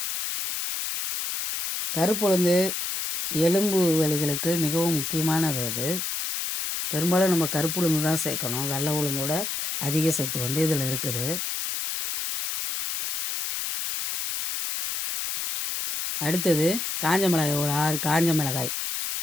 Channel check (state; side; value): noise; left; hiss, 3 dB below the sound